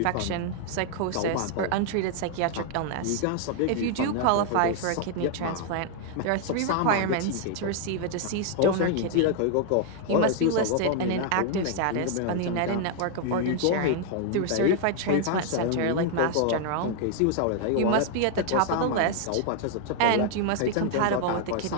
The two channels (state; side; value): different; both; correlation 0.00